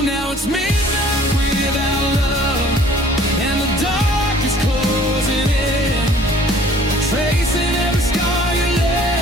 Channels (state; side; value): normal; both; correlation 0.54